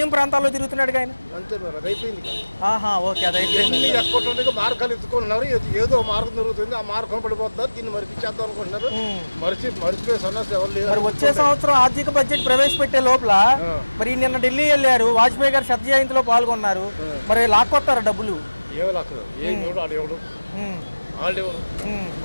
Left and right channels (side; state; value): both; inverted; correlation -1.00